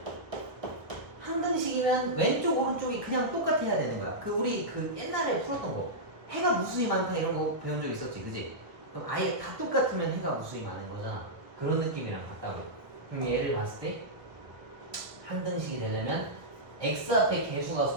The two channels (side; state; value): left; late; 1.2 ms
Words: 항등식이면 왼쪽 오른쪽이 그냥 똑같아야 되는 거야. 우리 옛날에 풀었던 거 해가 무수히 많다 이런 거 배운 적 있었지, 그지? 그럼 아예 다 똑같으면 해가 무수히 많은 거잖아. 그런 느낌이랑 같다고. 그럼 얘를 봤을 때 항등식이 되려면 x 앞에 개수가